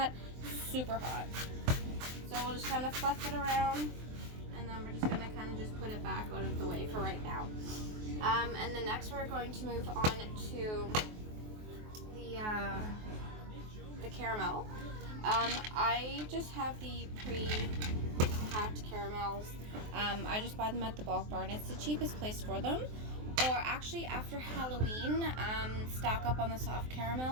Super hot. So we'll just kind of fluff it around, and then we're just going to kind of just put it back out of the way for right now. And then next we're going to move on to the caramel. I just have the pre-packed caramels. I just buy them at the bulk barn. It's the cheapest place for them. Or actually, after Halloween, stock up on the soft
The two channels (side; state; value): left; late; 23 ms